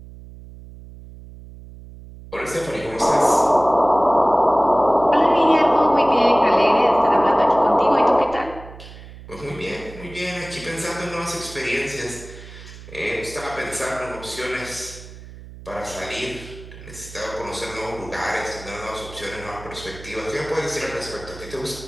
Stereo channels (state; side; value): noise; right; hum, 17 dB below the sound